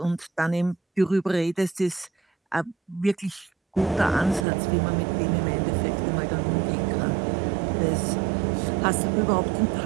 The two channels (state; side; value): drops out; left; at 4.5 s